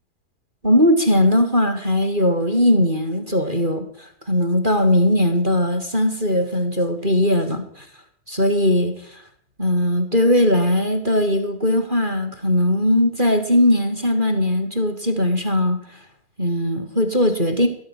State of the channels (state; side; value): late; left; 2.4 ms